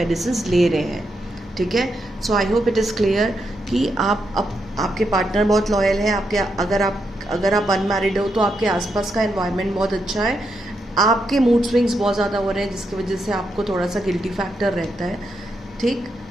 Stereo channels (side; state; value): both; normal; correlation 0.82